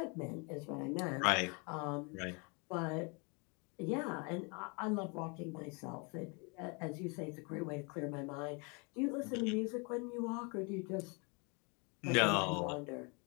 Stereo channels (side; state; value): right; quieter; 32.4 dB